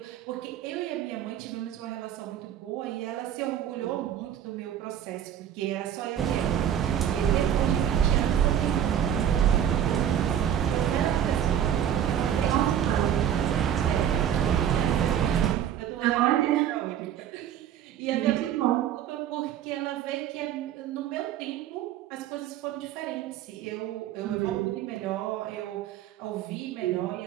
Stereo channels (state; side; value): quieter; left; 10.0 dB